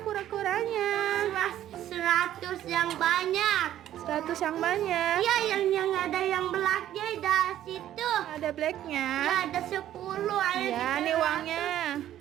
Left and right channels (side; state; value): left; quieter; 12.2 dB